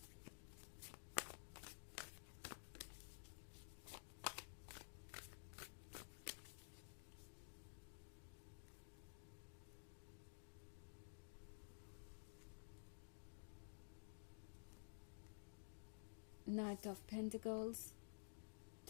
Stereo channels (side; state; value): right; silent; digital silence